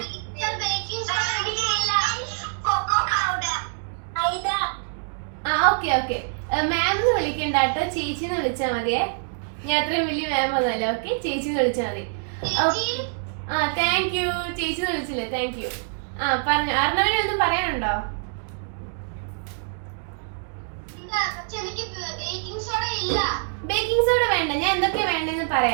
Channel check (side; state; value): left; silent; digital silence